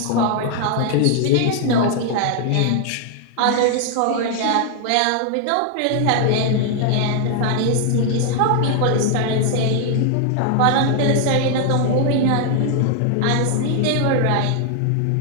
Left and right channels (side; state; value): both; different; correlation 0.00